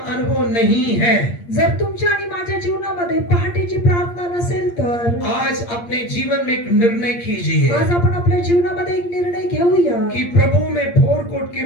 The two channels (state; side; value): late; right; 8.6 ms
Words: अनुभव नहीं है, जर तुमच्या आणि माझ्या जीवनामध्ये पहाटेची प्रार्थना नसेल तर आज अपने जीवन में एक निर्णय कीजिए आज आपण आपल्या जीवनामध्ये एक निर्णय घेऊया कि प्रभु मैं भोर को उठ के